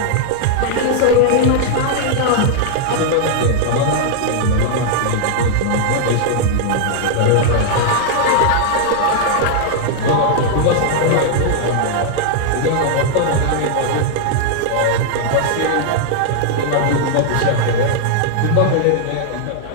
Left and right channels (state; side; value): different; both; correlation -0.01